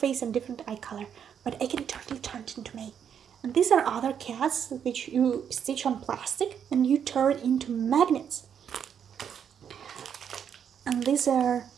and different eye color. But I can totally turn it into May. And these are other cats which you stitch on plastic and you turn into magnets. And these are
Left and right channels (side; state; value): left; quieter; 8.2 dB